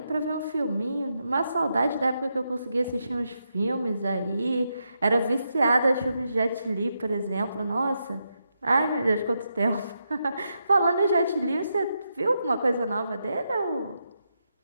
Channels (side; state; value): both; inverted; correlation -0.84